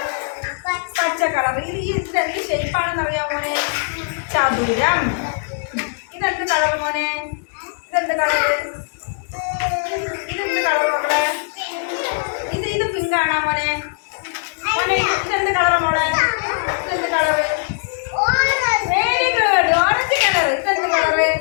പച്ച കളർ. ഇതെന്ത് ഷേപ്പാണെന്ന് അറിയാമോ മോനെ? ചതുരം. ഇതെന്ത് കളർ മോനെ? ഇതെന്ത് കളറ്? ഇതെന്ത് കളർ മക്കളെ? ഇത് പിങ്ക് ആണോ മോനെ? മോനെ ഇതെന്ത് കളറ് മോളെ? ഇതെന്ത് colour? Very good, orange colour. ഇതെന്ത് കളറ്?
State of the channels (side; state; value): right; silent; 65 dB below the other